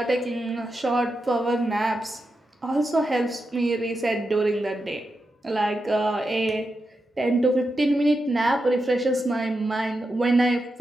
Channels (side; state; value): both; normal; correlation 0.88